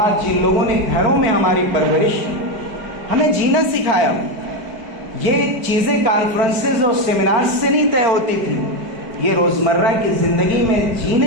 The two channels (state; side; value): late; left; 4.9 ms